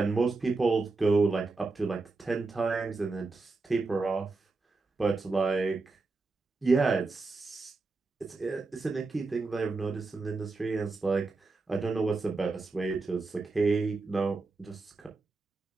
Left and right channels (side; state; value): left; quieter; 3.8 dB